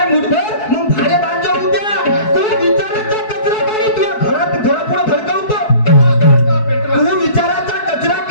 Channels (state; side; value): late; right; 4.7 ms